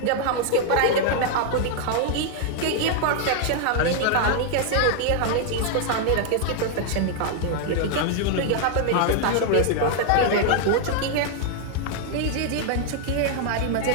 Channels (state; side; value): different; both; correlation 0.00